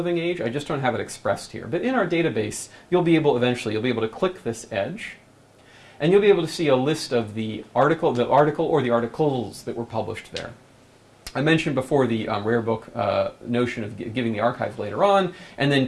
Age. I just don't have it expressed here. But in our database, you'll be able to click this edge, and you'll be able to see a list of the article or the articles that were published there. I mentioned before the rare book notion of giving the archive later on, and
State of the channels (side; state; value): both; identical; correlation 1.00